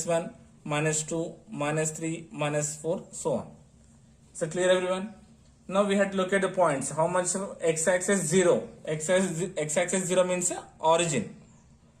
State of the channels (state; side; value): identical; both; correlation 1.00